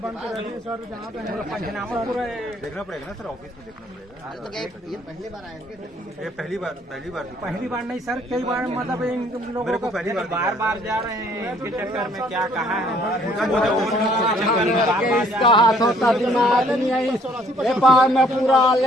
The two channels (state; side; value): normal; both; correlation 0.62